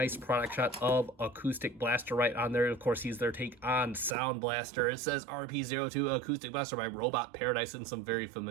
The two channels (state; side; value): drops out; left; at 4.2 s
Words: product shot of Acoustic Blaster right on there. Of course, he's their take on Soundblaster. It says RP-02 Acoustic Blaster by Robot Paradise in some very